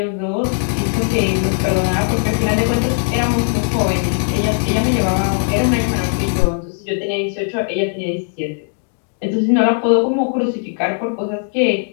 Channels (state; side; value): silent; right; digital silence